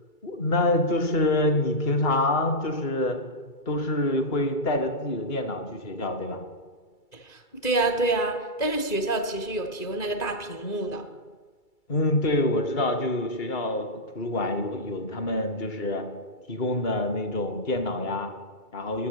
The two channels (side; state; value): right; late; 2.3 ms